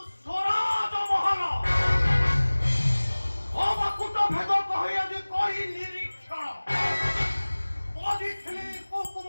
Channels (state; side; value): inverted; both; correlation -1.00